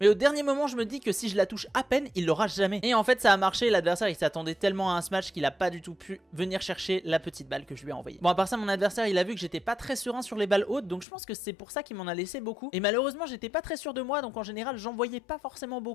mais au dernier moment je me dis que si je la touche à peine, il l'aura jamais. Et en fait ça a marché, l'adversaire il s'attendait tellement à un smash qu'il a pas du tout pu venir chercher la petite balle que je lui ai envoyée. Bon, à part ça, mon adversaire il a vu que j'étais pas très serein sur les balles hautes, donc je pense que c'est pour ça qu'il m'en a laissé beaucoup. Et malheureusement j'étais pas très sûr de moi, donc en général j'envoyais pas forcément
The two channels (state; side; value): drops out; right; at 11.1 s